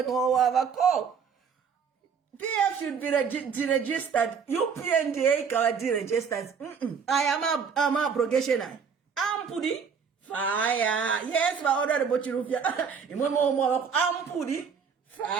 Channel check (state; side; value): quieter; left; 6.4 dB